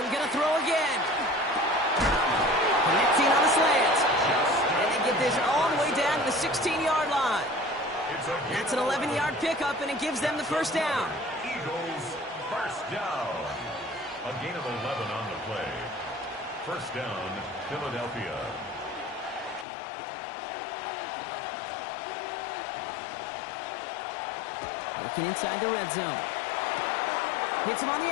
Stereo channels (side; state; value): right; drops out; at 19.7 s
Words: gonna throw again. Connecting on the slant. And they get this all the way down to the 16-yard line. That's an 11-yard pickup, and it gives them the 1st down. Eagles 1st down. A gain of 11 on the play. 1st down, Philadelphia. Working inside the red zone. Hits him on the